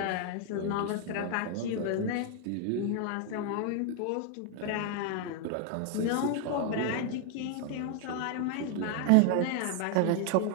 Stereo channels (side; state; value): both; different; correlation 0.00